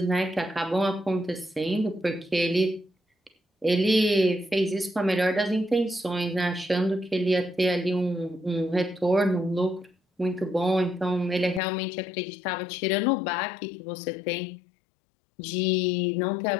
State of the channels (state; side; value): drops out; right; at 11.6 s